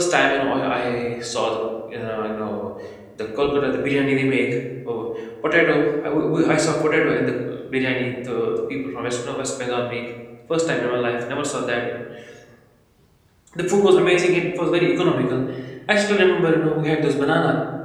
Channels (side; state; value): both; identical; correlation 1.00